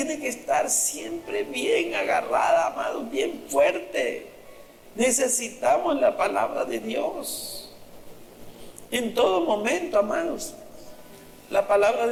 que estar siempre bien agarrada, amados, bien fuerte. Necesitamos la palabra de Dios en todo momento, amados. La palabra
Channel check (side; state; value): both; identical; correlation 1.00